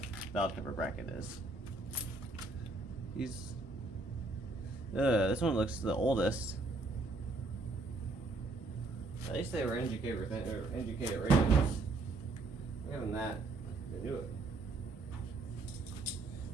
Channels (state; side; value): quieter; left; 3.1 dB